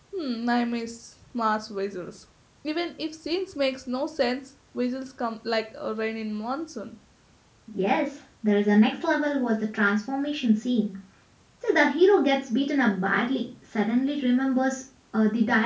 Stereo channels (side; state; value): both; identical; correlation 1.00